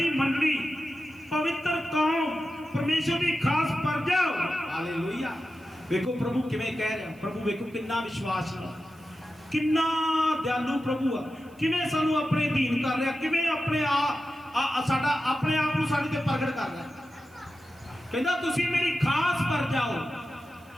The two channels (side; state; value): right; noise; hiss, 30 dB below the sound